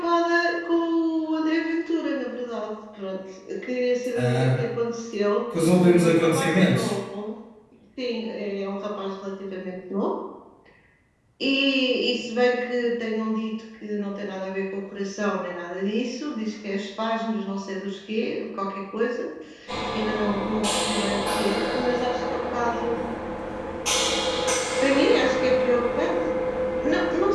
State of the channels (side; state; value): both; identical; correlation 1.00